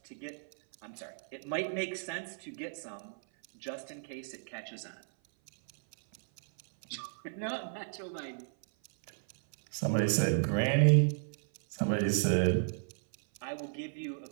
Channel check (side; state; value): left; silent; 55 dB below the other